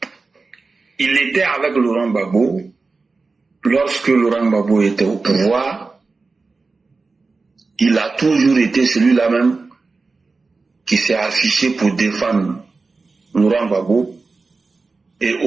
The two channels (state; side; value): quieter; left; 4.0 dB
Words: Il était avec Laurent Gbagbo. Lorsque Laurent Gbagbo était au pouvoir, il a toujours été celui-là même qui s'est affiché pour défendre Laurent Gbagbo. Et